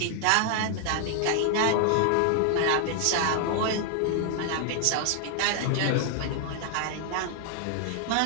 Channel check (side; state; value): both; different; correlation 0.00